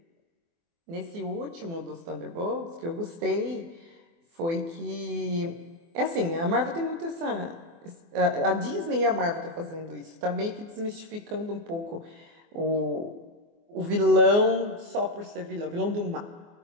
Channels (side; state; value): left; late; 24 ms